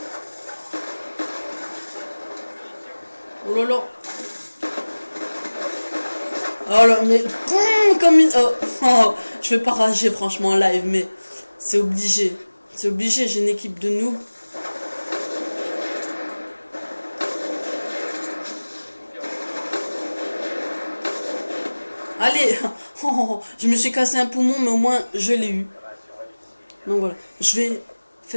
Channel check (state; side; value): inverted; both; correlation -1.00